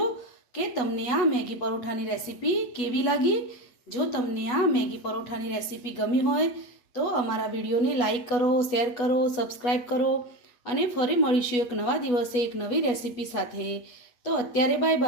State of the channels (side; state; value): right; late; 8.3 ms